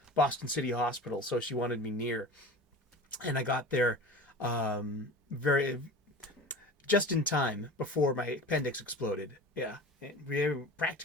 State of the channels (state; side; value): normal; both; correlation 0.35